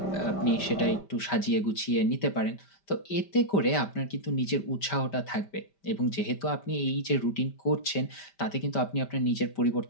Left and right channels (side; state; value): right; late; 5.1 ms